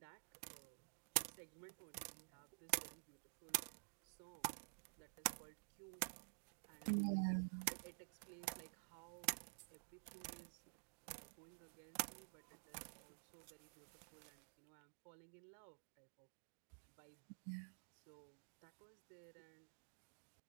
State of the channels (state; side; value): silent; left; digital silence